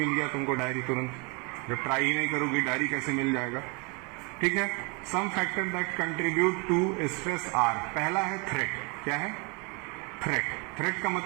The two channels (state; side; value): quieter; left; 31.7 dB